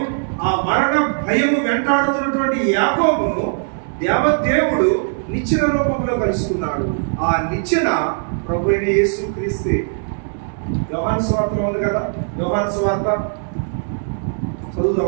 ఆ మరణ భయము వెంటాడుతున్నటువంటి యాకోబును దేవదేవుడు నిచ్చెన రూపంలో కలుసుకున్నాడు. ఆ నిచ్చెన ప్రభు అయిన యేసుక్రీస్తే. యోహాను సువార్తలో ఉంది కదా, యోహాను సువార్త చదువుదాం.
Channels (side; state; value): left; silent; 64 dB below the other